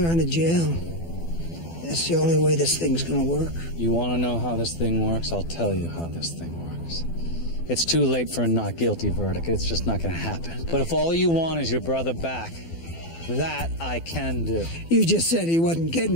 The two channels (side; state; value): right; late; 12 ms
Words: out of jail. That's the only way this thing's gonna work. You want to know how this thing works? I'll tell you how this thing works. It's too late for a not guilty verdict. It's just not going to happen. But if all you want is your brother back, that I can do. You just said he wasn't